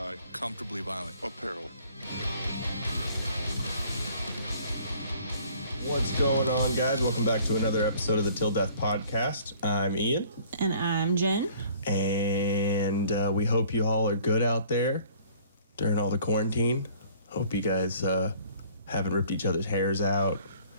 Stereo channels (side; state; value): both; inverted; correlation -0.55